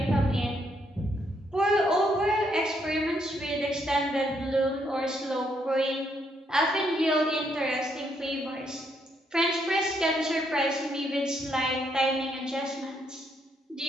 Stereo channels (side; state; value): both; normal; correlation 0.74